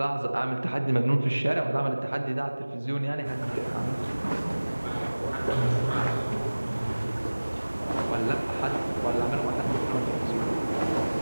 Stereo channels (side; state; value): both; inverted; correlation -1.00